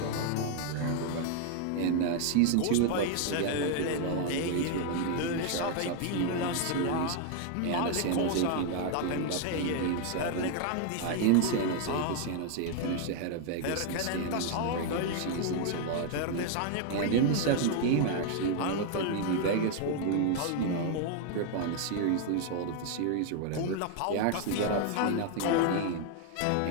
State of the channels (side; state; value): both; different; correlation 0.00